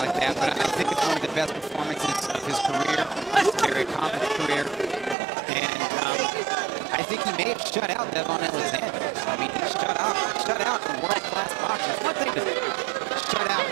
that, but I think it's one of the best performances of his career, his very accomplished career. And I think he may have shut out Devon Alexander. I mean, he shut out a world-class boxer. It's one thing to shut out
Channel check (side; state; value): left; drops out; at 5.2 s